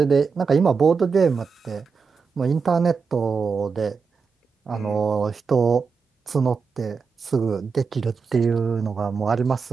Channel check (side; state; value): left; quieter; 5.3 dB